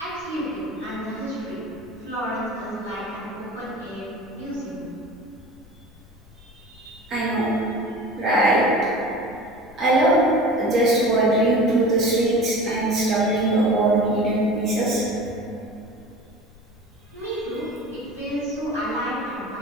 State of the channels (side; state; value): left; noise; rumble, 25 dB below the sound